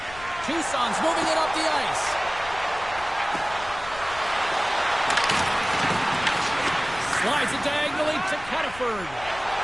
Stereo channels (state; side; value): noise; left; rumble, 17 dB below the sound